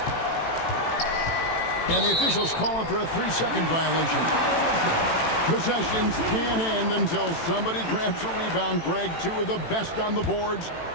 And the officials calling for a 3-second violation. Possessions can't end until somebody grabs a rebound. Greg, two of the best on the boards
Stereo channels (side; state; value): right; late; 18 ms